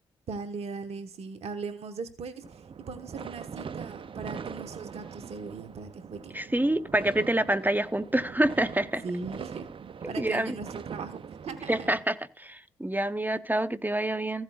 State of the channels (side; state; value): both; normal; correlation 0.79